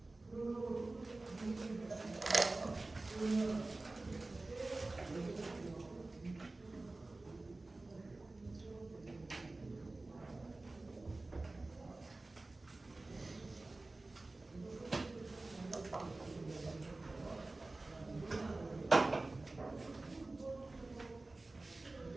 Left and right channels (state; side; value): quieter; left; 3.1 dB